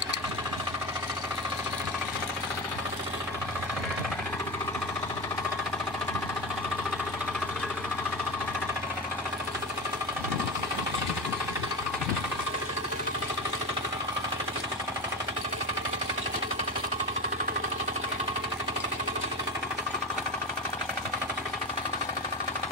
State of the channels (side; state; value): both; normal; correlation 0.22